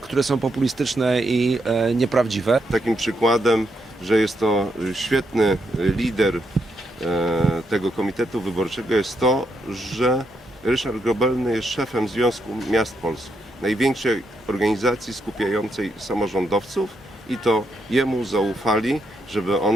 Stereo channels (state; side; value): normal; both; correlation 0.79